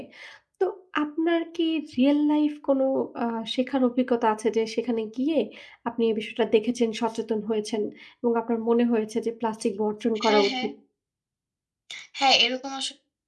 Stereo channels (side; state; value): both; identical; correlation 1.00